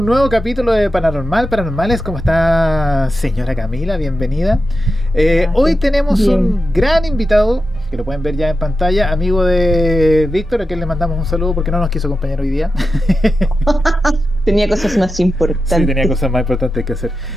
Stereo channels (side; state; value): both; normal; correlation 0.90